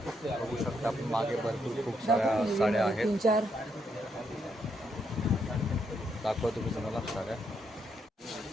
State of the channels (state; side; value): normal; both; correlation 0.77